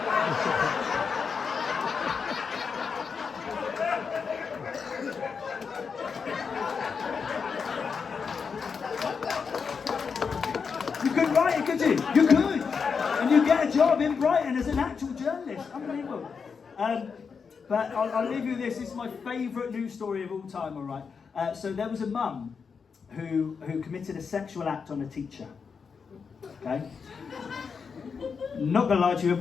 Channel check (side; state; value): right; quieter; 5.8 dB